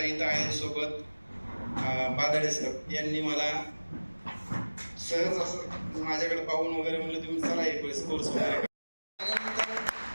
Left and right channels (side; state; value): both; inverted; correlation -1.00